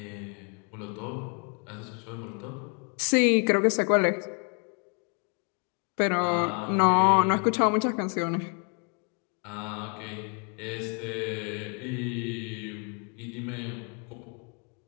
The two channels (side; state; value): right; quieter; 39.5 dB